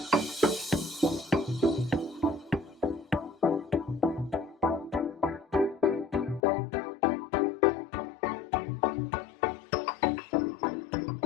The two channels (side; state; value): right; drops out; at 6.4 s